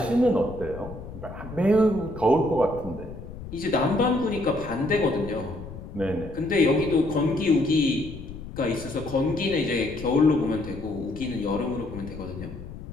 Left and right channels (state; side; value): noise; left; rumble, 12 dB below the sound